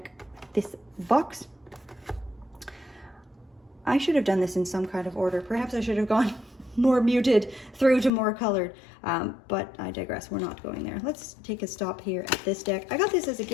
This box, I should have done this in some kind of order. Perhaps I should have gone more muted through to more colored, but I digress. We're not going there. Let's take a stop here at this deck. I got this as a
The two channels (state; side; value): drops out; right; at 8.1 s